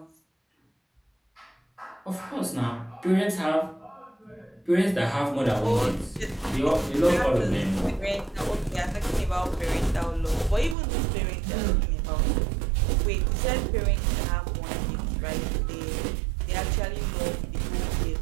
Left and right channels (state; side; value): drops out; left; at 10.8 s